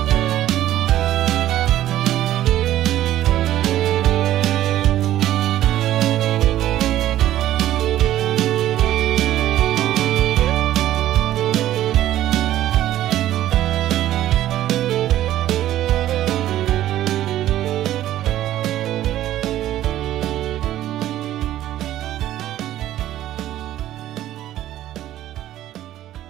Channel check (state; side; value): quieter; left; 13.2 dB